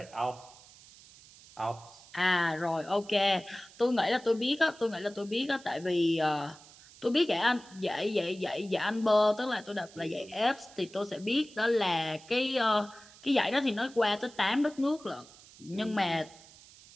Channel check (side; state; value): right; noise; hiss, 22 dB below the sound